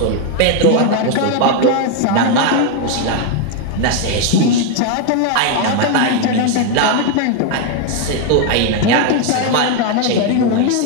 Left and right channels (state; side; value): different; both; correlation 0.01